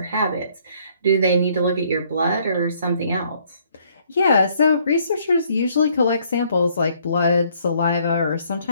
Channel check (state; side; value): inverted; both; correlation -0.65